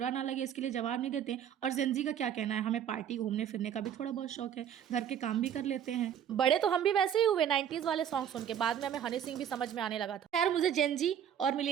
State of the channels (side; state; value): left; quieter; 9.3 dB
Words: ना लगे इसके लिए जवाब नहीं देते और जेनज़ी का क्या कहना है, हमें पार्टी घूमने-फिरने का भी थोड़ा बहुत शौक है, घर के काम भी कर लेते हैं। बड़े तो हम भी वैसे ही हुए 90s वाले सॉन्ग सुन के, बाद में हमें हनी सिंह भी समझ में आने लगा था। खैर मुझे जेनज़ी और